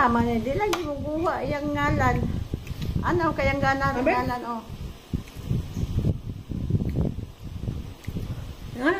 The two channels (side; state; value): both; identical; correlation 1.00